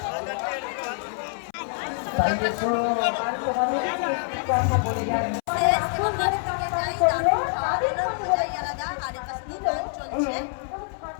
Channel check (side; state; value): right; silent; 61 dB below the other